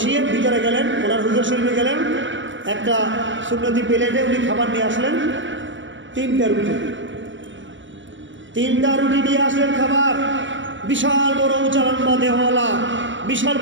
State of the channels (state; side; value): late; left; 0.55 ms